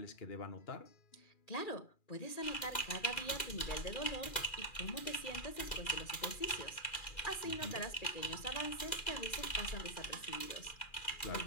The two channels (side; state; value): right; late; 2.4 ms